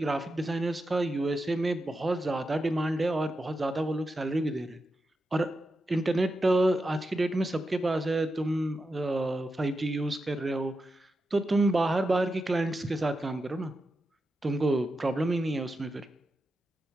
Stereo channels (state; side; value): normal; both; correlation 0.89